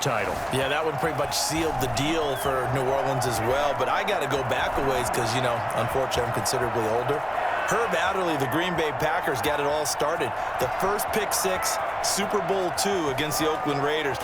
title. Yeah, that one pretty much sealed the deal for New Orleans as well. But I got to go back a ways because, you know, unfortunately I'm considerably older. Herb Adderley, the Green Bay Packers, got it all started. The first pick six, Super Bowl II against the Oakland Raiders,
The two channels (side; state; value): both; identical; correlation 1.00